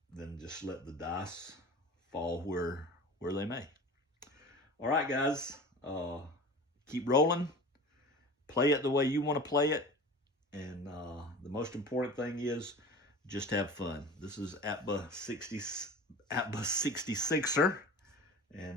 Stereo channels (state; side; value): normal; both; correlation 0.36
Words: then just let the dice fall where they may. All right, guys, keep rolling. Play it the way you want to play it. And the most important thing is just have fun. This is APBA 66er.